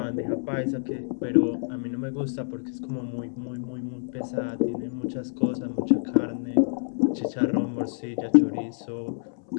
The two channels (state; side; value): silent; right; 60 dB below the other